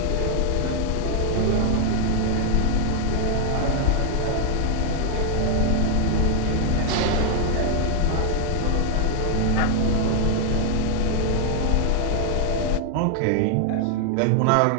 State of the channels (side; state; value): both; different; correlation 0.00